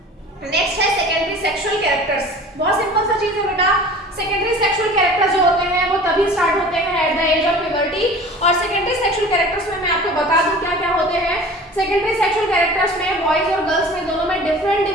नेक्स्ट है सेकेंडरी सेक्सुअल कैरेक्टर्स। बहुत सिंपल सा चीज है बेटा, सेकेंडरी सेक्सुअल कैरेक्टर्स जो होते हैं वो तभी स्टार्ट होते हैं at the age of puberty. और सेकेंडरी सेक्सुअल कैरेक्टर्स में मैं आपको बता दूं क्या क्या होते हैं। सेकेंडरी सेक्सुअल कैरेक्टर्स में बॉयज और गर्ल्स में दोनों में डिफरेंट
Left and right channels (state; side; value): normal; both; correlation 0.42